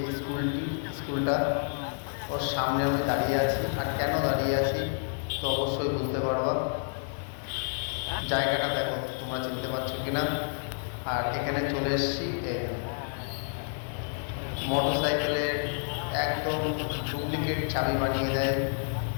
স্কুলটা, ওর সামনে আমি দাঁড়িয়ে আছি। আর কেন দাঁড়িয়ে আছি তো অবশ্যই বুঝতে পারবা। জায়গাটা দেখো, তোমরা চিনতে পারছো কিনা। আর এখানে চলে এসেছি মোটর সাইকেলের একদম ডুপ্লিকেট চাবি বানিয়ে দেয়,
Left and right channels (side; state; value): right; silent; 58 dB below the other